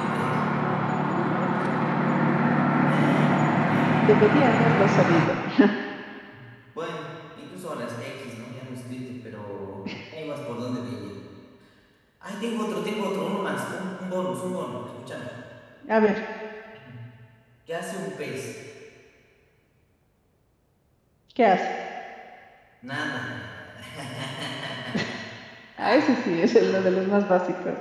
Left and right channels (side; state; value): both; identical; correlation 1.00